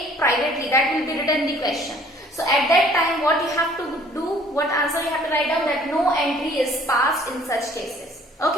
privately. That will be written in the question. So at that time what you have to do, what answer you have to write down, that no entry is passed in such cases.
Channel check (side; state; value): both; normal; correlation 0.55